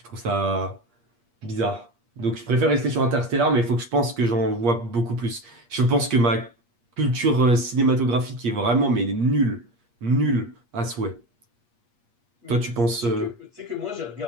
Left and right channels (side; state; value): left; late; 8.5 ms